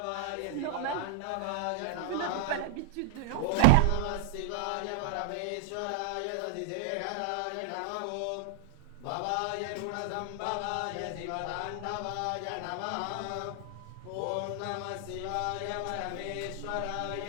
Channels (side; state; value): both; different; correlation -0.01